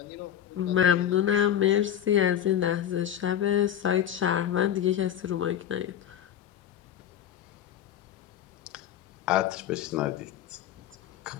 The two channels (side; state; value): right; quieter; 10.4 dB